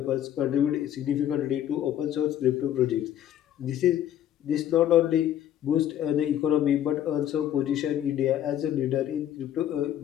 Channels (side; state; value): right; quieter; 11.2 dB